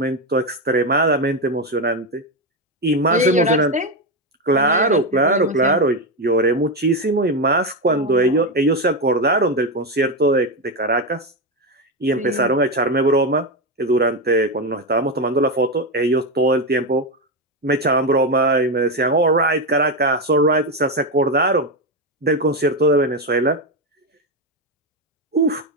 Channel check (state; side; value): normal; both; correlation 0.10